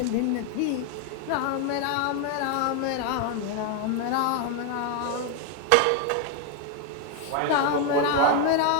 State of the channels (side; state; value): both; different; correlation 0.00